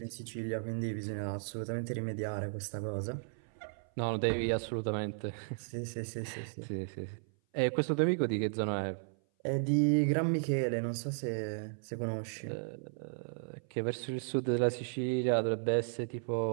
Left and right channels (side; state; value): left; silent; 55 dB below the other